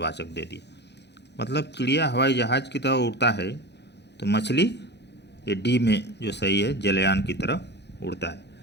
दे दिया। मतलब चिड़िया हवाई जहाज़ की तरह उड़ता है, तो मछली ये डी में जो सही है, जलयान की तरह उड़ता है।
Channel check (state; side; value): late; right; 0.50 ms